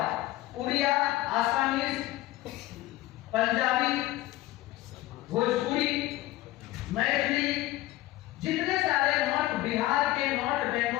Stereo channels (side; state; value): right; quieter; 16.9 dB